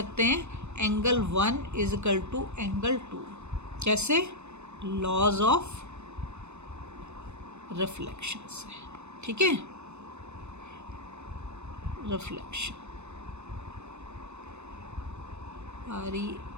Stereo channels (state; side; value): late; left; 0.82 ms